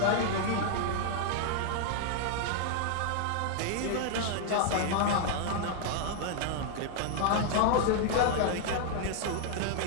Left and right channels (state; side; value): different; both; correlation 0.00